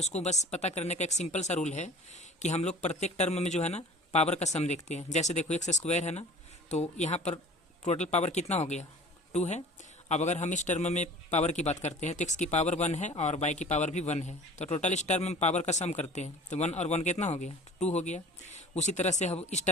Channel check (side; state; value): both; normal; correlation 0.44